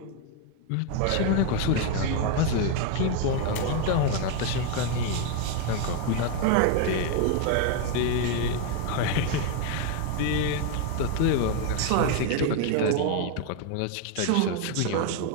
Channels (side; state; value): both; different; correlation 0.01